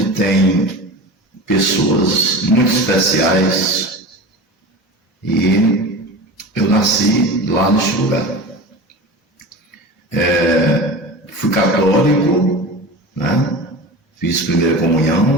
tem pessoas muito especiais, e eu nasci lá neste lugar. Fui católico, né? Fiz primeira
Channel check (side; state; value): both; normal; correlation 0.31